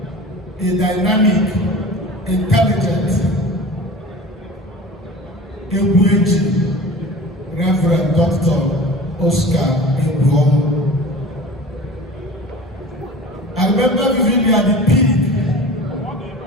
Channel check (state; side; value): normal; both; correlation 0.38